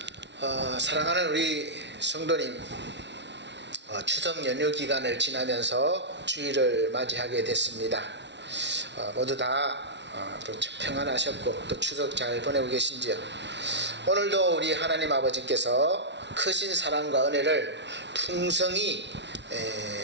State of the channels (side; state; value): left; late; 0.51 ms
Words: 사랑하는 우리 성도님, 추석 연휴 기간을 지나면서 주일을 맞이하게 됐습니다. 모두 다 평안하셨고 또 추석 잘 보내고 계신지요? 오늘도 우리 하나님 아버지께서 크신 사랑과 은혜를 풍성히